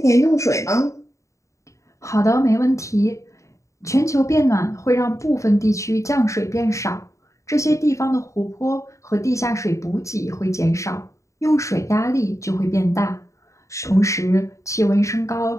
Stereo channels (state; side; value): late; right; 0.15 ms